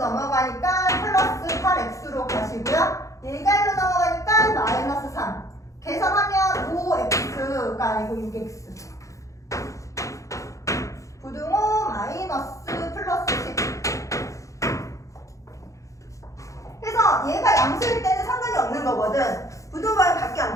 플러스 8x로 가시고요. 얘가 1로 넘어가니까 -3. 계산하면 5x가 아니고 6x. 부등호 마이너스 플러스 10. 그래서 얘가 양수일 때는 상관이 없는 거거든. 부등호 방향 바뀌어 안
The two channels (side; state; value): right; late; 0.15 ms